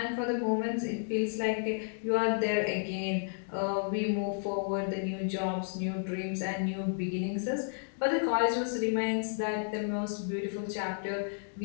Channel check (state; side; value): silent; right; digital silence